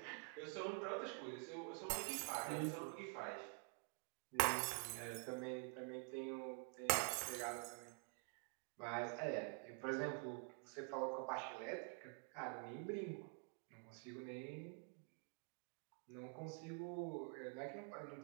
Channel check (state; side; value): quieter; left; 38.3 dB